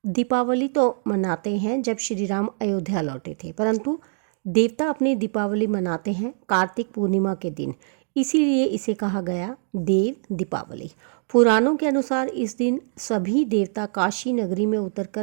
दीपावली तो मनाते हैं जब श्री राम अयोध्या लौटे थे, परंतु देवता अपनी दीपावली मनाते हैं कार्तिक पूर्णिमा के दिन, इसीलिए इसे कहा गया देव दीपावली। पुराणों के अनुसार इस दिन सभी देवता काशी नगरी में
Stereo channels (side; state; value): left; silent; digital silence